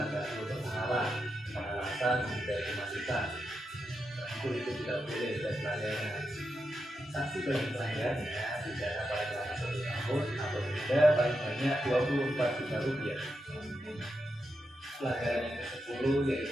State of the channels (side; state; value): both; normal; correlation 0.86